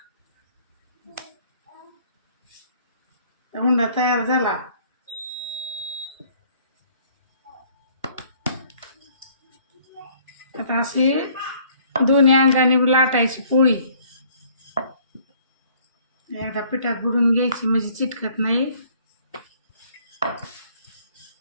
उंडा तयार झाला. आता अशी दोन्ही अंगाने लाटायची पोळी. एकदा पिठात बुडून घ्यायची म्हणजे चिटकत नाही.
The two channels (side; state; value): both; inverted; correlation -0.59